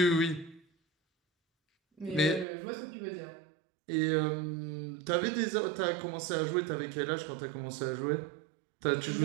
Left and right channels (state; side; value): drops out; left; at 2.5 s